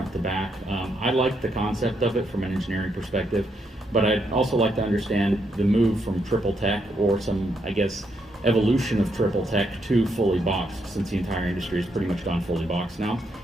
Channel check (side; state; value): both; normal; correlation 0.77